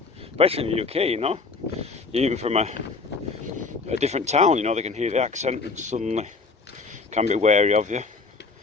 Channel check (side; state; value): right; quieter; 4.3 dB